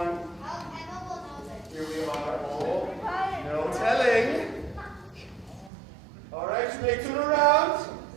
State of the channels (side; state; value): left; drops out; at 5.7 s